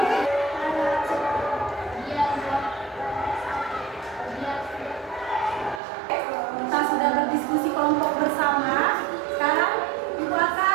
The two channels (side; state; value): left; drops out; at 5.8 s